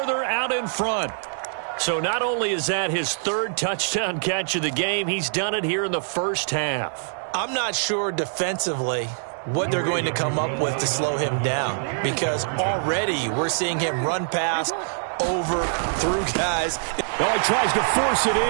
out in front. So not only is that his 3rd touchdown catch of the game, he's done it here in the first half. I'm not sure defensively what they're going to come up with to slow him down, because already we're seeing him run past, over, through guys. Oh, he tries to force it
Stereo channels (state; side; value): silent; left; digital silence